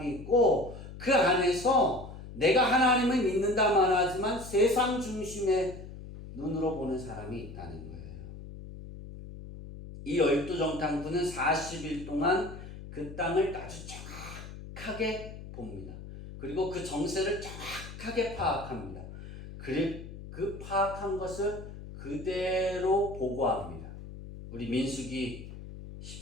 있고 그 안에서 내가 하나님을 믿는다만 하지만 세상 중심의 눈으로 보는 사람이 있다는 거예요. 이 12정탐꾼은 40일 동안 그 땅을 아주 정확하게 봅니다. 그리고 그 정세를 정확하게 파악합니다. 그 파악한 것을 그대로 보고합니다. 우리 민수기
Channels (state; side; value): noise; left; hum, 13 dB below the sound